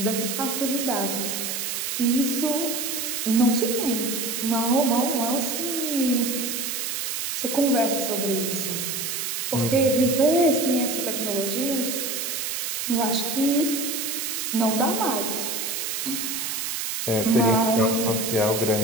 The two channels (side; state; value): right; noise; hiss, 2 dB below the sound